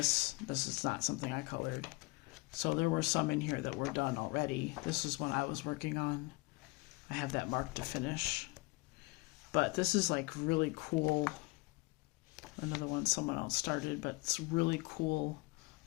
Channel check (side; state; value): right; quieter; 25.1 dB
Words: This is not something I colored. So there were some in here that were done already. This is one I was working on. I have that marked to finish. But this is like really cool. Another one someone else started, but it's really cool